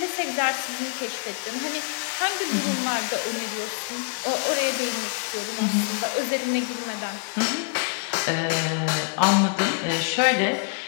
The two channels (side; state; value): right; quieter; 32.1 dB